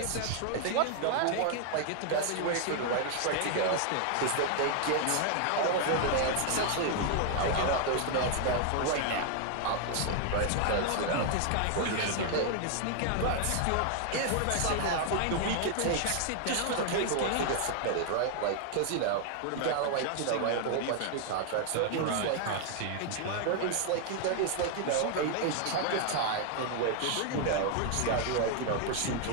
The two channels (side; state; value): both; different; correlation 0.00